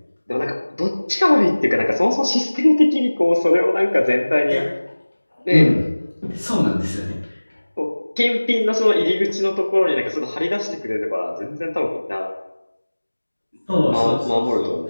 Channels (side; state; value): both; inverted; correlation -1.00